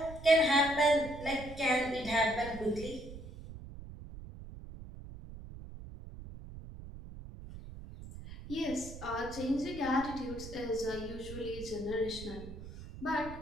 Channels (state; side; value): noise; right; rumble, 13 dB below the sound